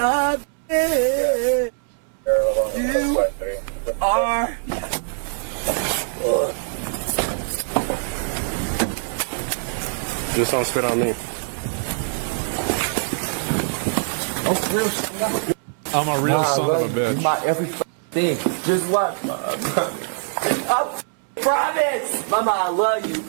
You are. Just don't spit on me. I'm a real son of a bitch. My every thing. Just what? I promise. Mama, I love you.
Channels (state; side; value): silent; left; 64 dB below the other